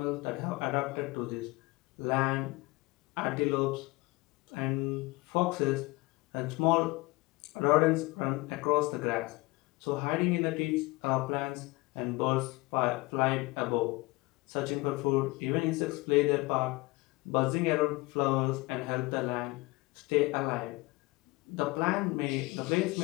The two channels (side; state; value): right; quieter; 22.8 dB